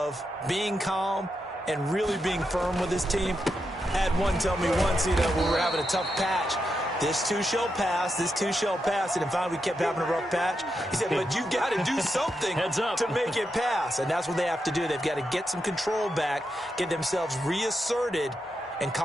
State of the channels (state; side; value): normal; both; correlation 0.85